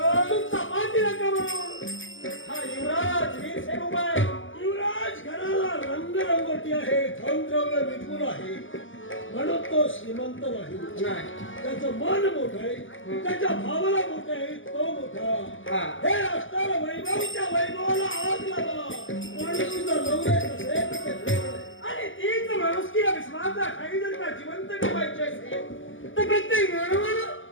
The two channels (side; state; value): right; late; 0.57 ms